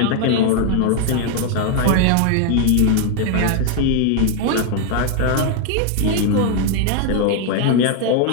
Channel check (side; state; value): both; different; correlation 0.00